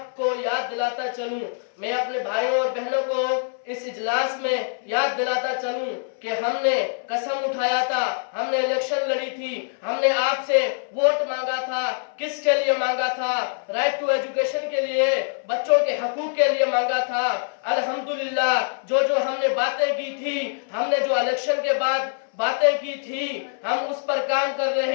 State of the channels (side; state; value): right; silent; 62 dB below the other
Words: याद दिलाता चलूं, मैं अपने भाइयों और बहनों को इस इजलास में याद दिलाता चलूं कि हमने कसम उठाया था, हमने इलेक्शन लड़ी थी, हमने आपसे वोट मांगा था। किसके लिए मांगा था? राइट टू एजुकेशन के लिए, बच्चों के हकूक के लिए मांगा था। अल्हम्दुलिल्लाह, जो हमने बातें की थी, हमने जो इलेक्शन के बाद बातें की थी, हम उस पर काम कर